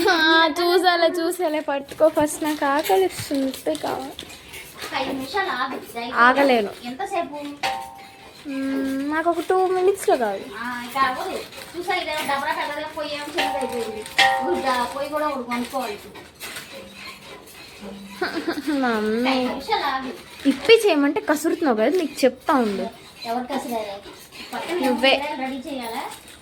చూసాలే పట్టుకో ఫస్ట్. నాకు ఆకలి ఇస్తుంది కావాలి. 5 నిమిషాలు ఆగు. ఆగలేను. ఎంతసేపు? నాకు ఒక 2 minutesలో కావాలి. ఇంకా అవ్వదు. చూసా ఇదే డబ్బా పెద్దగా పొయ్యి ఏమో చిన్నది అయిపోయింది. పొయ్యి కూడా ఒకటి కొనుక్కోవాలి. మమ్మీ 5 నిమిషాలు ఆగు. ఇప్పి చేయమంటే కసురుతున్నావు కదా, నీకు చెప్తా ఉండు. ఎవరు కసిరారు? పక్కన నువ్వే. రెడీ చేయాలా?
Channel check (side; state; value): both; identical; correlation 1.00